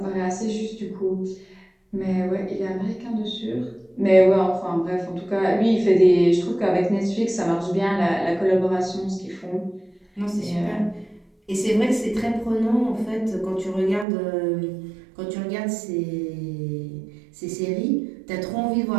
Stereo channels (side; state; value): left; drops out; at 14.1 s